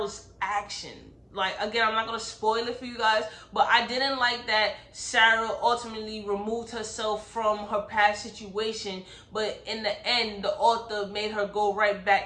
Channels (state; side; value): identical; both; correlation 1.00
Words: action. Like, again, I'm not gonna spoil it for you guys, but I didn't like that Sarah ultimately removed herself from her past situation, but in the end the author made her go right